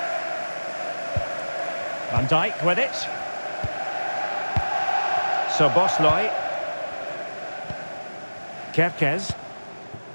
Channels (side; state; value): both; inverted; correlation -1.00